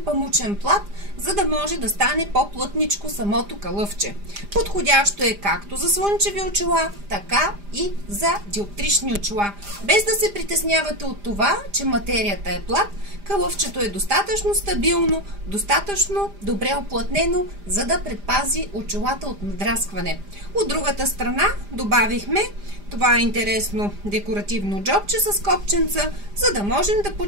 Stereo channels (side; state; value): left; late; 5.0 ms